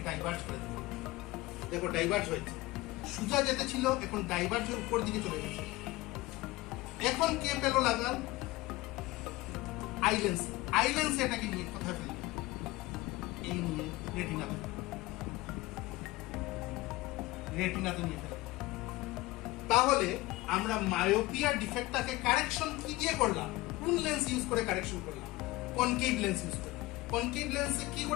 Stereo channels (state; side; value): quieter; right; 19.6 dB